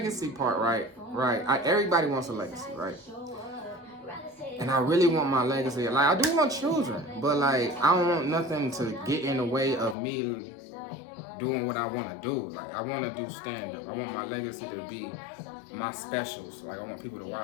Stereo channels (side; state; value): right; drops out; at 10.0 s